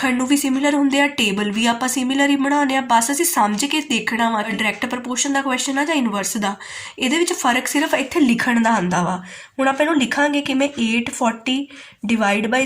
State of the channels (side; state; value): both; identical; correlation 1.00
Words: ਨੂੰ ਵੀ ਸਿਮਿਲਰ ਹੁੰਦੇ ਆ, ਟੇਬਲ ਵੀ ਆਪਾਂ ਸਿਮਿਲਰ ਹੀ ਬਣਾਉਂਦੇ ਆ, ਬਸ ਅਸੀਂ ਸਮਝ ਕੇ ਦੇਖਣਾ ਵਾ ਡਾਇਰੈਕਟ ਪ੍ਰਪੋਰਸ਼ਨ ਦਾ ਕੁਐਸਚਨ ਆ ਜਾਂ ਇਨਵਰਸ ਦਾ। ਇਹਦੇ ਵਿੱਚ ਫਰਕ ਸਿਰਫ ਇੱਥੇ ਲਿਖਣ ਦਾ ਆਉਂਦਾ ਵਾ। ਹੁਣ ਆਪਾਂ ਇਹਨੂੰ ਲਿਖਾਂਗੇ ਕਿਵੇਂ, 840 divide by